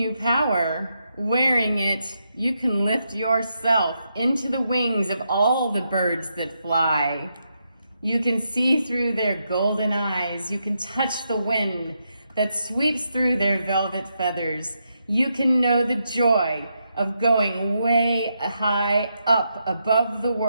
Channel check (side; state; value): both; inverted; correlation -0.82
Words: power. wearing it, you can lift yourself into the wings of all the birds that fly. You can see through their golden eyes. You can touch the wind that sweeps through their velvet feathers. You can know the joy of going way high up above the